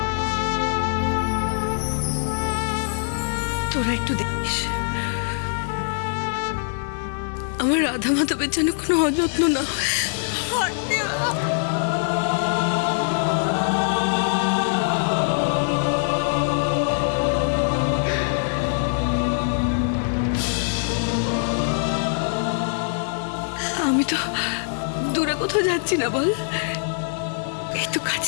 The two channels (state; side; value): silent; right; digital silence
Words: তোরা একটু দেখিস আমার রাধা মাধবের যেন কোনো অযত্ন না হয়। আমি তো দূরে কোথাও যাচ্ছি না, বল। এই তো